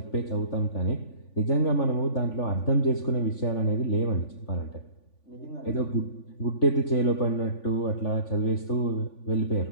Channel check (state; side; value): late; right; 3.5 ms